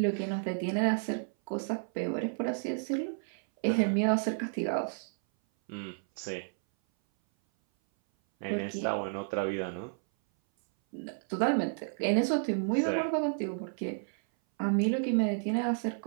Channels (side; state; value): left; silent; 57 dB below the other